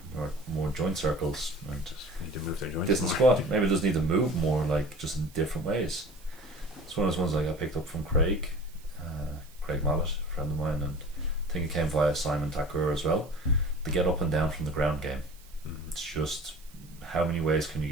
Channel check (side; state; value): right; noise; hiss, 25 dB below the sound